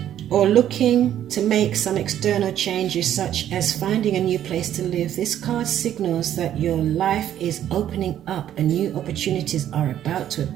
Or looking to make some external changes, such as finding a new place to live. This card signals that your life is opening up and new opportunities are about to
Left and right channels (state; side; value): quieter; left; 11.1 dB